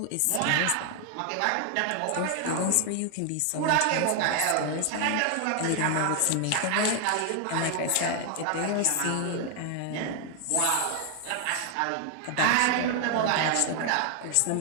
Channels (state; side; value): different; both; correlation 0.00